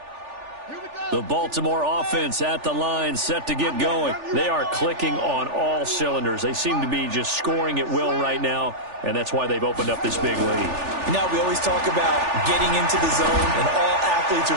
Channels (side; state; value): left; late; 3.4 ms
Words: The Baltimore offense at the line, set to get going. They are clicking on all cylinders. They seem to be just scoring at will right now, and that's why they've opened up this big lead. Now, we always talk about getting into the zone, and all athletes